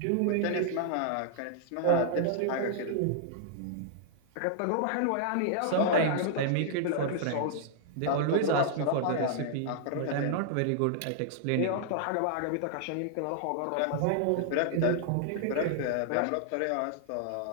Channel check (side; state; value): both; different; correlation -0.01